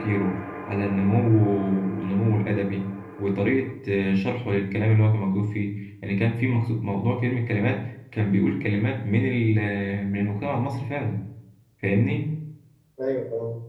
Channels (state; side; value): identical; both; correlation 1.00